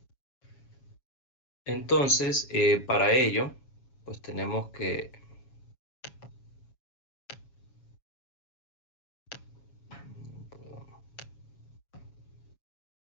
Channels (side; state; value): right; late; 7.2 ms